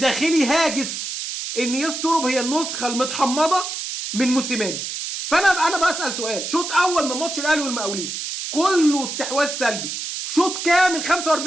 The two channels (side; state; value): right; noise; hiss, 5 dB below the sound